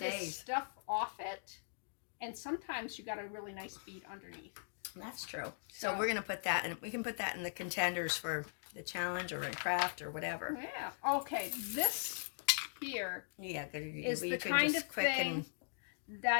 stays. stuff off it, and sometimes you got a really nice bead underneath. That's true. So we're gonna put that, and we can put that in the contenders for the challenge or in craft or whatever. Yeah. Okay. This here is the kind of thing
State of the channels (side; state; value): right; silent; digital silence